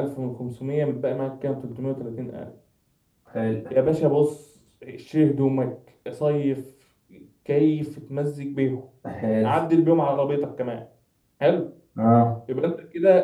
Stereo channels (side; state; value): both; identical; correlation 1.00